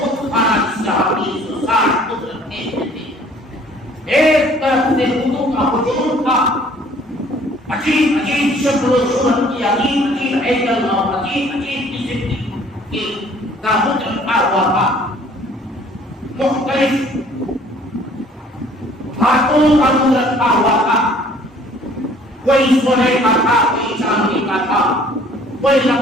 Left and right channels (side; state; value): both; normal; correlation 0.56